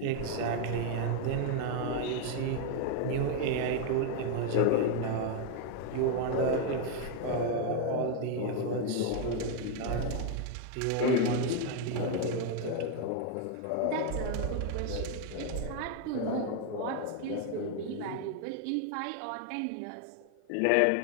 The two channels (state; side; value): different; both; correlation 0.01